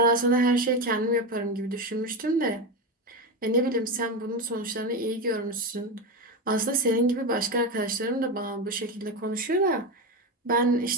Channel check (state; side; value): normal; both; correlation 0.16